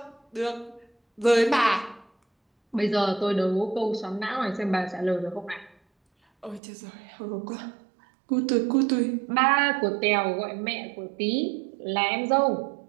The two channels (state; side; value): drops out; left; at 6.6 s